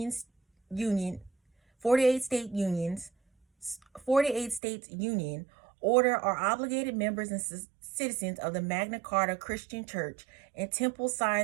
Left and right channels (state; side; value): drops out; left; at 4.6 s